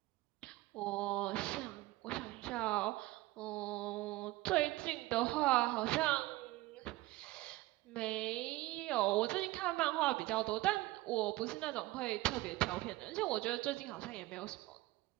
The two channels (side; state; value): left; quieter; 19.0 dB